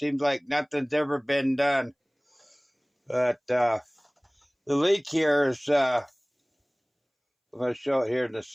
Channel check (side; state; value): both; identical; correlation 1.00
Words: like nothing's ever been done. But the leak here is, I'm going to show it here in the